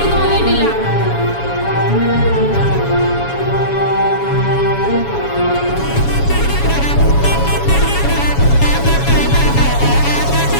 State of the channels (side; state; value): right; late; 7.2 ms